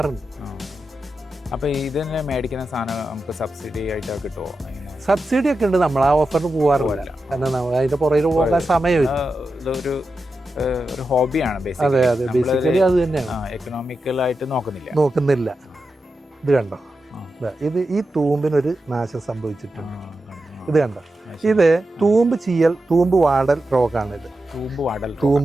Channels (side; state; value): both; normal; correlation 0.90